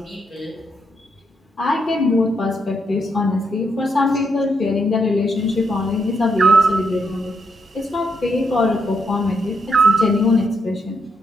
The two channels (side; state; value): both; normal; correlation 0.78